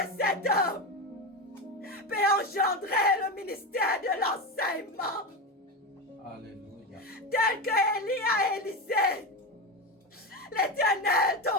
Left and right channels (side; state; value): both; normal; correlation 0.18